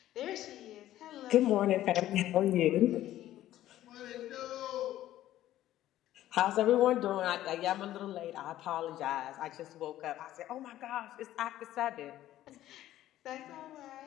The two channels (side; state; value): right; quieter; 13.6 dB